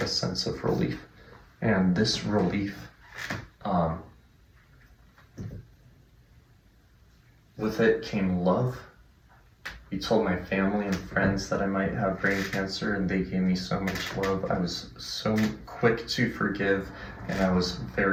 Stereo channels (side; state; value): both; identical; correlation 1.00